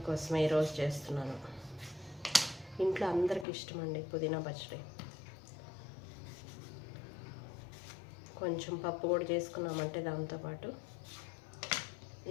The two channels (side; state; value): right; drops out; at 3.5 s